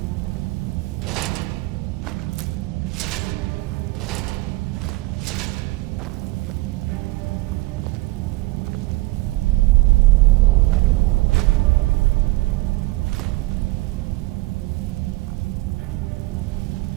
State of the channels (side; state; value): left; quieter; 21.2 dB